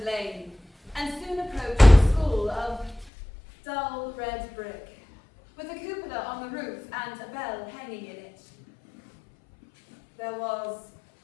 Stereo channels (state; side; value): drops out; right; at 3.1 s